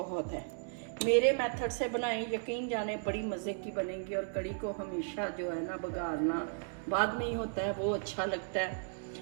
है। मेरे मेथड से बनाए, यकीन जाने बड़ी मज़े की बनेगी। और कड़ी को हमेशा जो है ना बघारना बाद में ही होता है, वो अच्छा लगता है।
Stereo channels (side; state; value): left; silent; digital silence